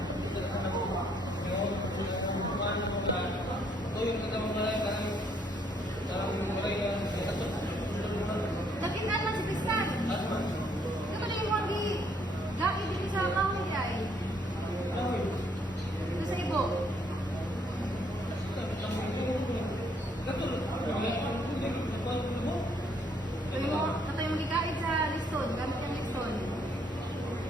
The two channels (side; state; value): both; normal; correlation 0.68